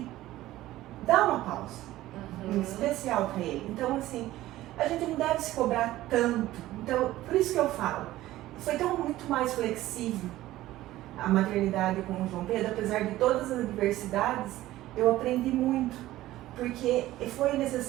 dar uma pausa, especial para ele. Então, assim, a gente não deve se cobrar tanto. Então, por isso que eu falo, foi tão muito mais flexível a maternidade com o João Pedro, apesar de todas as adversidades, eu aprendi muito, porque foi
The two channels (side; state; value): left; quieter; 15.6 dB